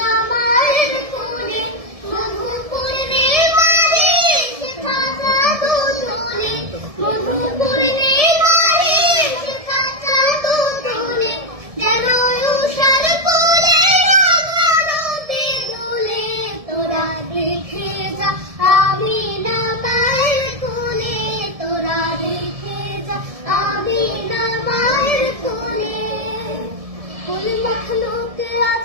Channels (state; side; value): late; left; 1.7 ms